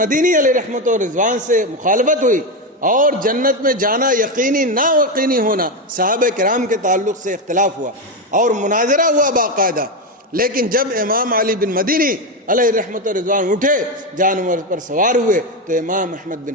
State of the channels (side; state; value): both; normal; correlation 0.11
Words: علیہ رحمت و رضوان سے مخالفت ہوئی اور جنت میں جانا یقینی نہ یقینی ہونا، صحابہ کرام کے تعلق سے اختلاف ہوا اور مناظرہ ہوا باقاعدہ، لیکن جب امام علی بن مدینی علیہ رحمت و رضوان اٹھے جانور پر سوار ہوئے تو امام احمد